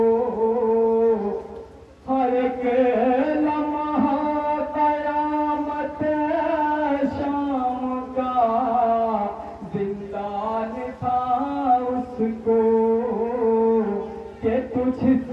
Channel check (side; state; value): both; identical; correlation 1.00